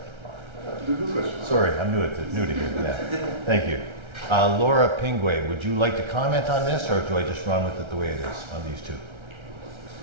Sorry, I'm new to here. Yeah. Thank you. Laura Pingway, would you like to comment on this, or do I just run with it the way it is on these two?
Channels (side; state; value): left; late; 1.3 ms